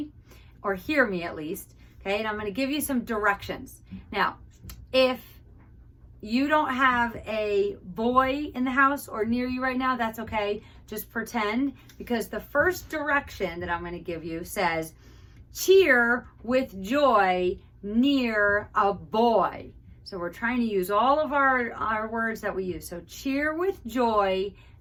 or hear me at least. Okay, and I'm going to give you some directions. Now, if you don't have a boy in the house or near you right now, that's okay. Just pretend, because the first direction that I'm going to give you says, cheer with joy near a boy. So we're trying to use all of our words that we use. So cheer with joy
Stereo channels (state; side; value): identical; both; correlation 1.00